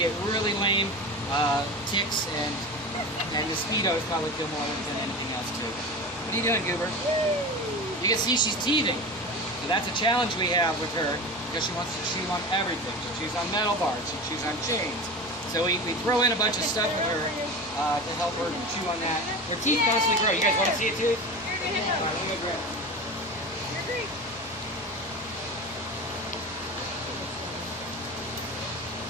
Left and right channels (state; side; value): normal; both; correlation 0.29